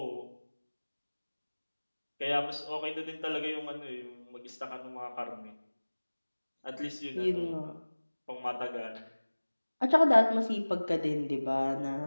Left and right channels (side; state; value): both; inverted; correlation -1.00